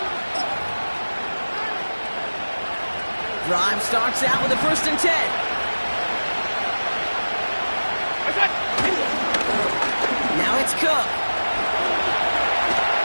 Drive starts out with a 1st and 10. Now it's Cook.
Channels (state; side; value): inverted; both; correlation -1.00